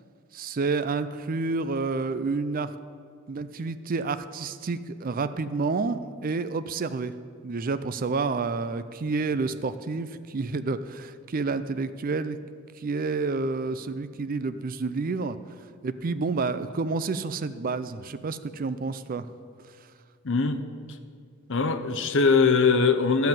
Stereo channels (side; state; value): both; normal; correlation 0.26